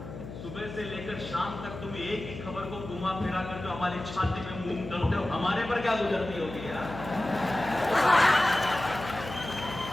सुबह से लेकर शाम तक तुम एक ही खबर को घुमा फिरा कर जो हमारी छाती में मूंग डालते हो, हमारे पर क्या गुजरती होगी यार।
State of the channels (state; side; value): noise; left; hum, 11 dB below the sound